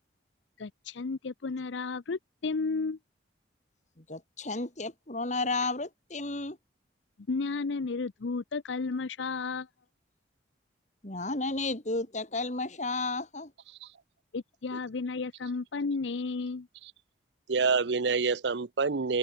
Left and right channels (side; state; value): both; normal; correlation -0.04